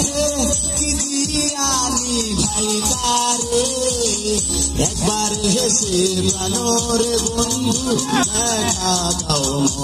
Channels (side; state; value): both; identical; correlation 1.00